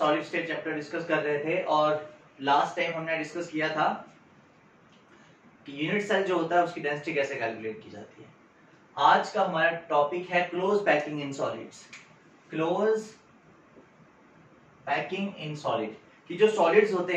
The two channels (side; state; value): both; identical; correlation 1.00